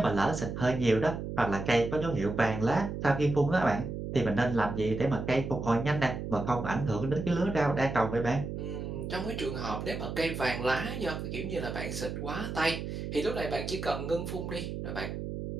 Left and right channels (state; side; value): noise; right; hum, 5 dB below the sound